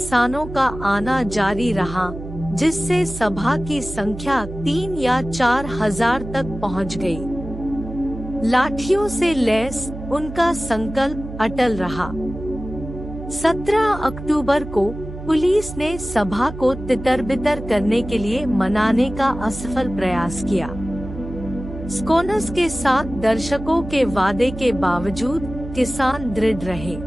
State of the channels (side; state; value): right; noise; hum, 11 dB below the sound